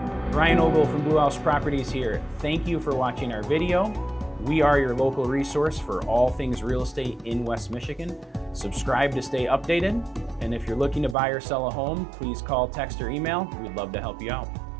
Ryan Ogle from Blue House Properties here. Thank you for watching our video. We are your local resource for all things real estate in West Michigan. Subscribe to stay updated. And if you're looking to buy or sell a home, please call, text, or email. We'd love to help you out.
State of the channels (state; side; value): drops out; left; at 11.2 s